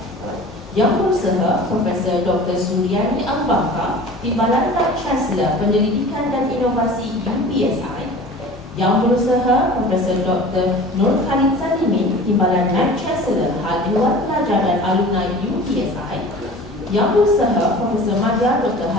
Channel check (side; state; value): both; normal; correlation 0.41